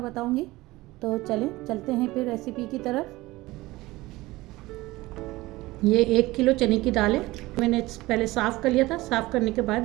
बताऊंगी। तो चलते हैं फिर रेसिपी की तरफ। ये 1 किलो चने की दाल है। मैंने पहले साफ़ कर लिया था। साफ़ करने के बाद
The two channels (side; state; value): left; quieter; 19.4 dB